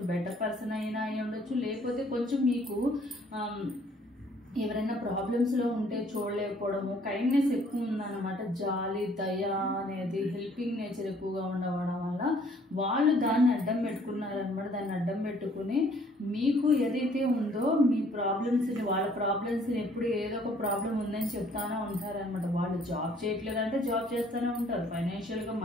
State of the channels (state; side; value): normal; both; correlation 0.60